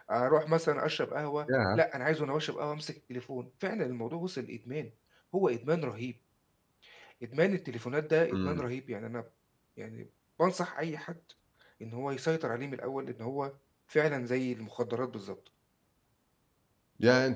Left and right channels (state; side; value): identical; both; correlation 1.00